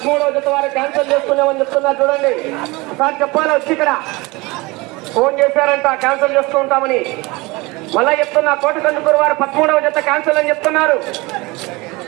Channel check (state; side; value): quieter; left; 23.8 dB